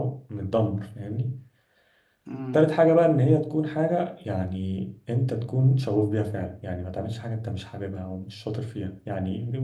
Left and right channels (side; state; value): both; identical; correlation 1.00